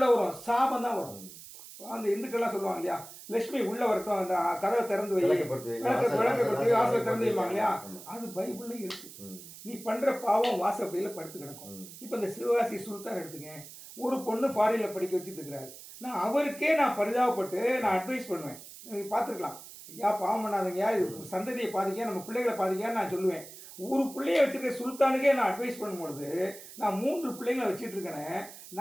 வரும்? சாபம் தான் வரும். அந்த இந்துக்கள்லாம் சொல்லுவாங்க இல்லையா, லட்சுமி உள்ளே வரட்டும், அந்த கதவை திறந்து வை, விளக்கப்படுத்தி வாசலை திறந்து வைப்பாங்க இல்லையா, அது பைபிள்லையும் இருக்கு. நீ பண்ணுற பாவம் வாசப்படியில் படுத்து கிடக்கும். இப்போ இந்த சிவகாசி சுல்தான் எடுத்துங்க, ஒரு பொண்ணு ஃபாரினில் படிக்க வச்சுட்டு இருக்கிறாரு. நான் அவருக்கே பரிதாபப்பட்டு நான் அட்வைஸ் பண்ணுவேன். நீங்கள் பார்த்துருக்கலாம், ஐயா பாவம் பண்ணாதீங்க, இது சந்ததியை பாதிக்க, நம்ம பிள்ளைகளை பாதிக்கான்னு நான் சொல்லுவேன். ஒரு பிள்ளைய வச்சுருக்க சுல்தானுக்கே நான் அட்வைஸ் பண்ணும்பொழுது நான் 3 பிள்ளைங்களை வச்சுட்டு இருக்கேனே,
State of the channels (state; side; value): noise; right; hiss, 16 dB below the sound